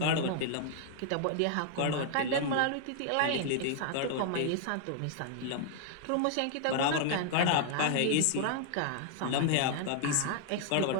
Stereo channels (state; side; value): different; both; correlation 0.00